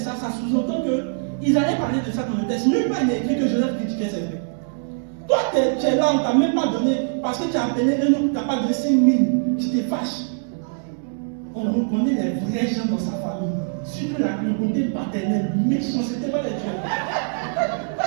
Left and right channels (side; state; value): left; silent; digital silence